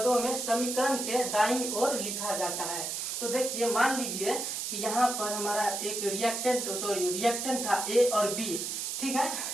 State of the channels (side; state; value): right; noise; hiss, 3 dB below the sound